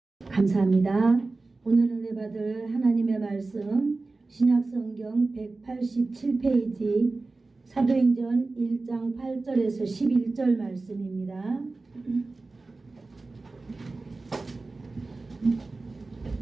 감사합니다. 오늘 은혜 받을 하나님의 말씀 신약성경 187페이지 사도행전 1장 8절에서 11절 말씀입니다.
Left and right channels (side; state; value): left; quieter; 3.5 dB